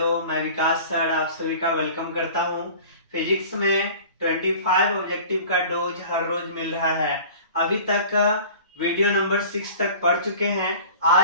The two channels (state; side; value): inverted; both; correlation -0.42